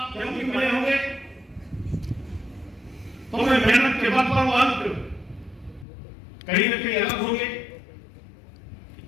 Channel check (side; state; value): right; drops out; at 5.9 s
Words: क्योंकि मिले होंगे तो मैं मेहनत के बल पर अंक कहीं न कहीं अलग होंगे।